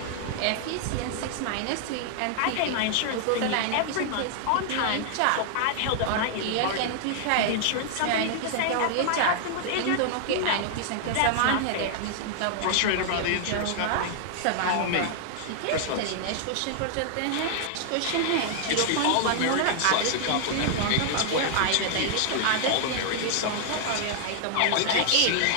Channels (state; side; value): different; both; correlation -0.01